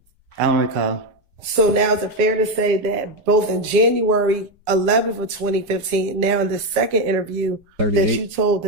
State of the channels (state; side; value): late; left; 5.5 ms